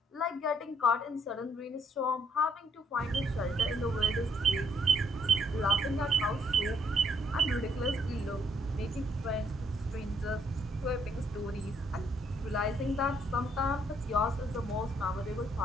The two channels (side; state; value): both; normal; correlation 0.69